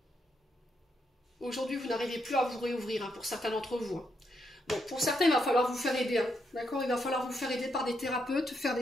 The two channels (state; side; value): normal; both; correlation 0.79